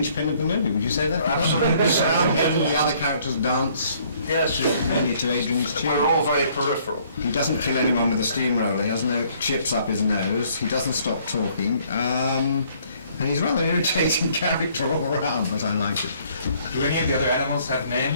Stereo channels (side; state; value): both; inverted; correlation -0.62